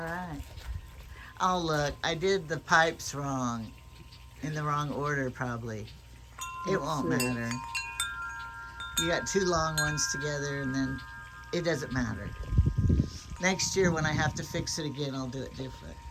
right. Oh, look, I did the pipes wrong. In the wrong order, probably. It won't matter. You got two long ones together, and then it doesn't matter. Next year, when I have to fix it again, I'll do it different.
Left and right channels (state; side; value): identical; both; correlation 1.00